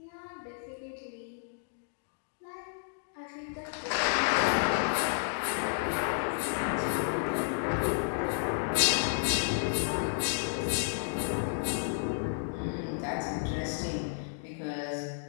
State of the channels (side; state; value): right; silent; digital silence